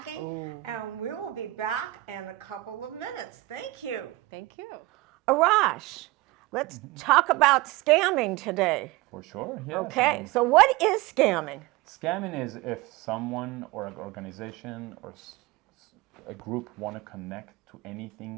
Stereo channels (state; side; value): quieter; left; 19.6 dB